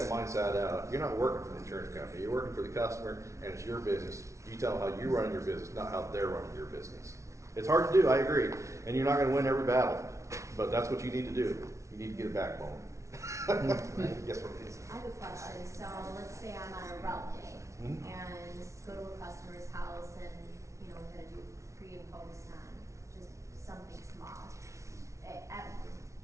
mindset out. You're not working for the insurance company. You're working for the customer, and it's your business. You tell them how you're running your business, not how they're running your business. It's hard to do, I agree, and you're not going to win every battle, but that's what you need to do. You need to get a backbone. Yes, what it is. I have a question. So let's say I'm on a route day and go to a customer's house and, you know, we're going to do pre and post on just something small.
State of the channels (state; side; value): late; left; 0.14 ms